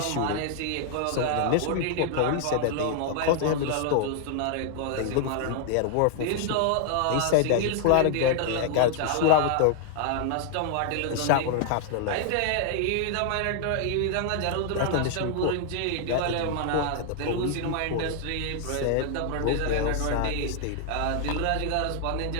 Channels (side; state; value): both; different; correlation 0.00